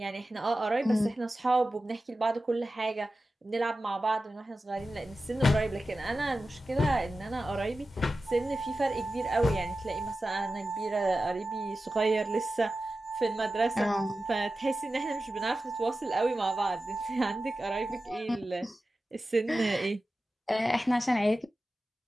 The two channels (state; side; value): normal; both; correlation 0.94